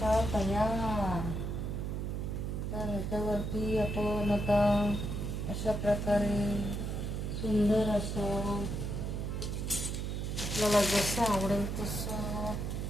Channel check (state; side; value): noise; right; hum, 2 dB below the sound